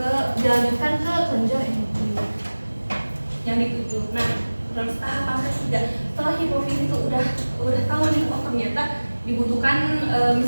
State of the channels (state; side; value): inverted; both; correlation -1.00